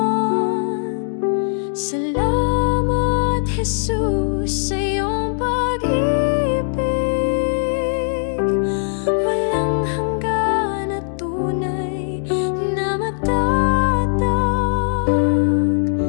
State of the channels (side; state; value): right; silent; digital silence